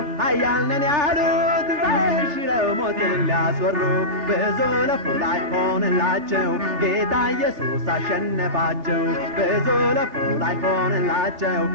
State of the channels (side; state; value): left; late; 3.4 ms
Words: ኃያል ነን ያሉት ሽረው ሞትን ሊያስወሩ ብዙ ለፉ ላይ ሆንላቸው ጌታ ኢየሱስ አሸነፋቸው ብዙ ለፉ ላይ ሆንላቸው